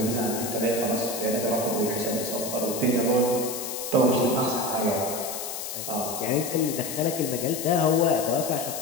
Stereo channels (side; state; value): left; noise; hiss, 6 dB below the sound